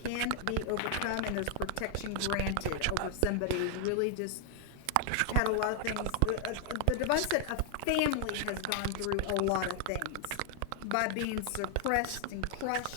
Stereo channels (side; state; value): both; different; correlation 0.00